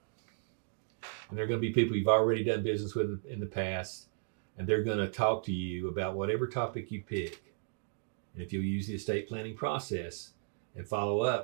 And they're going to be people you've already done business with in the past, and they're going to talk to you about whatever topic you pick. And if you'll use the estate planning process and follow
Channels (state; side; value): silent; left; digital silence